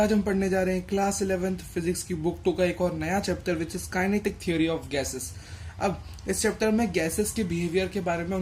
हम पढ़ने जा रहे हैं क्लास 11th फिजिक्स की बुक 2 का एक और नया chapter which is kinetic theory of gases. अब इस चैप्टर में गैसेस के बिहेवियर के बारे में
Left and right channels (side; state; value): both; identical; correlation 1.00